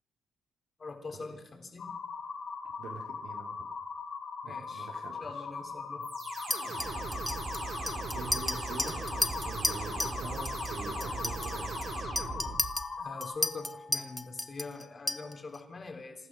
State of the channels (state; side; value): normal; both; correlation 0.88